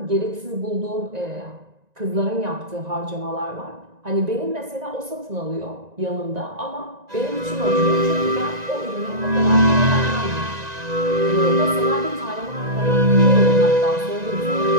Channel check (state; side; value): late; left; 1.9 ms